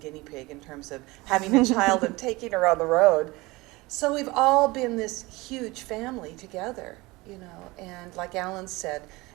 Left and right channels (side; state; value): left; quieter; 22.1 dB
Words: pig in terms of having a child and taking her on the road. So we've all been this huge family together, you know, and like Alan said,